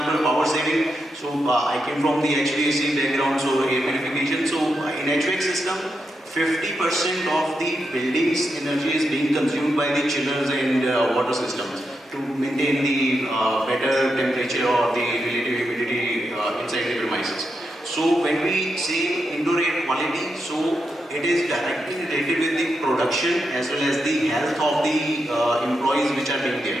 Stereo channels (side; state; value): both; normal; correlation 0.85